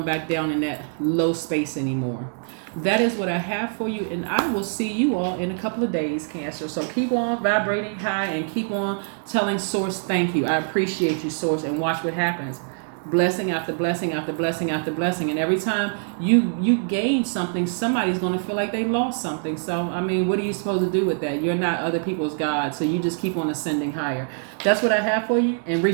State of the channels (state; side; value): silent; left; digital silence